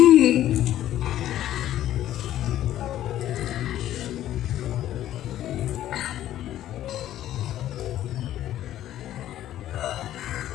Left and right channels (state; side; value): quieter; right; 12.7 dB